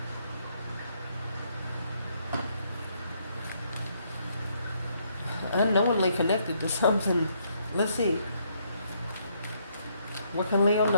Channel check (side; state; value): both; inverted; correlation -0.72